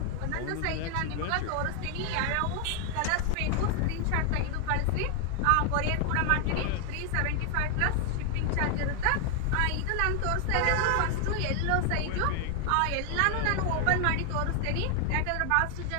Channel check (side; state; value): both; different; correlation 0.00